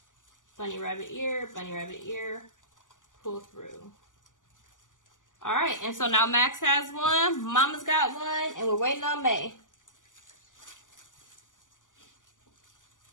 bunny rabbit ear, pull through. All right, and so now Max has one, Mama's got one, and we're waiting on May.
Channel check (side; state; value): right; late; 0.87 ms